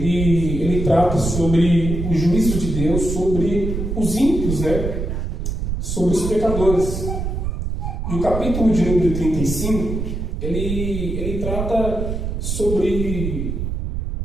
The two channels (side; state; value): right; noise; rumble, 3 dB below the sound